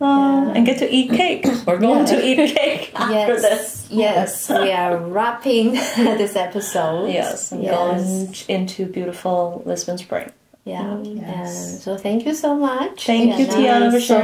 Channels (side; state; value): both; identical; correlation 1.00